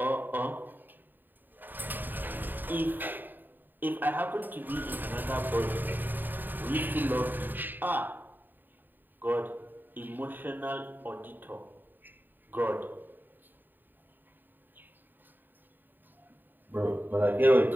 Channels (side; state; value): left; late; 0.091 ms